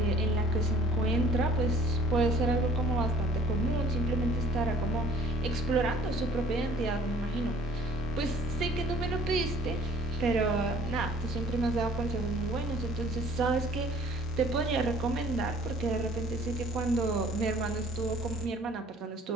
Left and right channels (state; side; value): normal; both; correlation 0.55